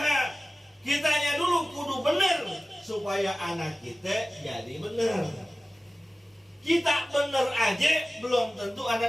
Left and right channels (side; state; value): both; normal; correlation 0.96